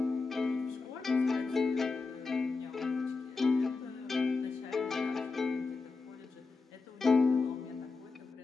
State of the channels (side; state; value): right; quieter; 4.2 dB